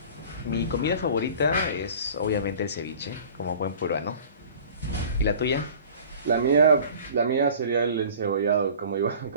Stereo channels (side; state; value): both; inverted; correlation -0.44